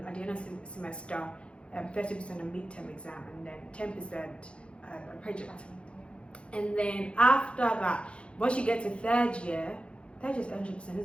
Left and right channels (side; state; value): right; late; 0.058 ms